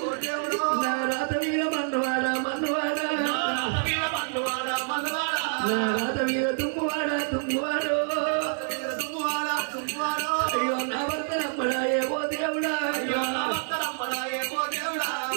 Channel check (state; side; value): silent; left; 60 dB below the other